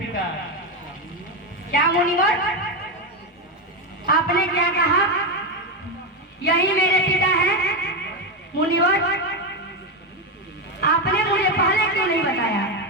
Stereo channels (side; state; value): both; normal; correlation 0.11